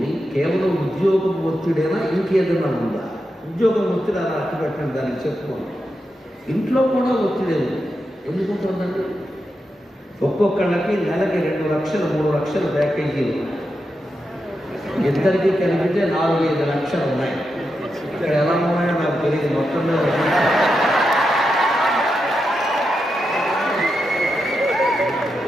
కేవలం ఉద్యోగం ఒత్తిడైనా ఇంకేదైనా ఉందా? ఉద్యోగం ఒత్తిడి అలా అట్టు పెట్టండి, దానికి చెప్పుకోండి. ఇంట్లో కూడా ఒత్తిడి ఎందుకుంటుందండి? ఒక్కొక్కళ్ళకి నెలకి 2 లక్షలు 3 లక్షల ప్యాకేజీలు, ఇద్దరికి కలిపితే 4-5 లక్షలు ఉన్నాయి. ఇక్కడ ఎలా ఉన్నాయో నాకు తెలియదు. మొత్తం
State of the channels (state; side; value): normal; both; correlation 0.87